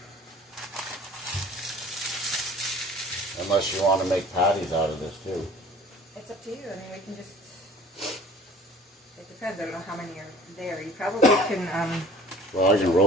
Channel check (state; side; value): normal; both; correlation 0.47